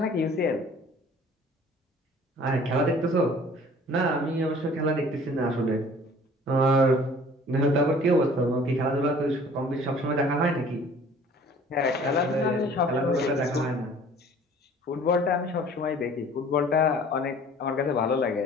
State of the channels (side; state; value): both; normal; correlation 0.50